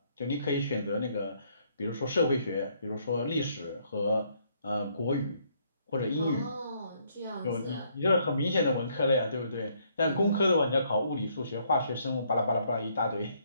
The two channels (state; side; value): inverted; both; correlation -0.69